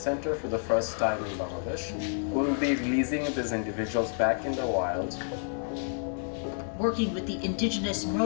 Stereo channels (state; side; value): silent; right; 58 dB below the other